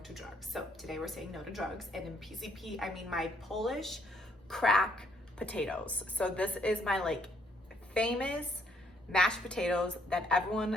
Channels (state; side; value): normal; both; correlation 0.68